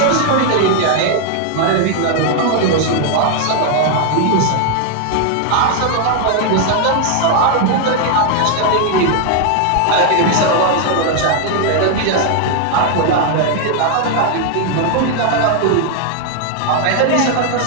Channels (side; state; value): both; different; correlation 0.00